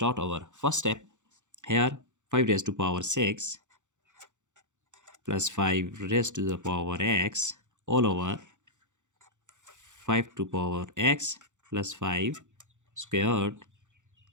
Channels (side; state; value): left; late; 0.85 ms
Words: our first step. Here 5 raised to power 6 plus 5 raised to the power x all over 5 to power x plus 5 squared.